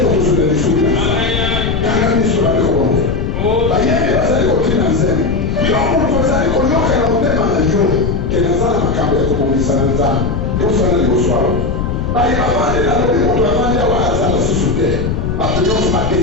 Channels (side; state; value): left; noise; rumble, 2 dB below the sound